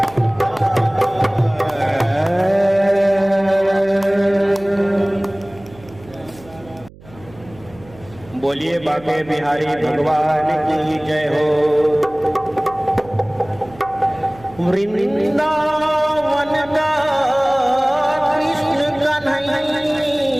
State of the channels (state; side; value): noise; right; hum, 22 dB below the sound